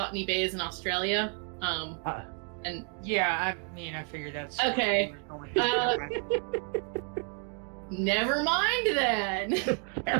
Bay is in Australia. And Yeah, I mean, I figured that's... Okay. Never mind then.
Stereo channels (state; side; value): quieter; left; 38.2 dB